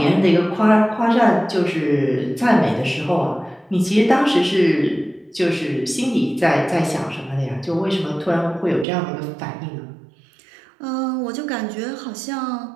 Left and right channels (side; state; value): left; drops out; at 8.8 s